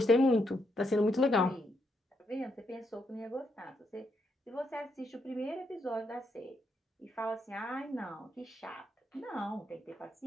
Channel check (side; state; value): both; normal; correlation 0.78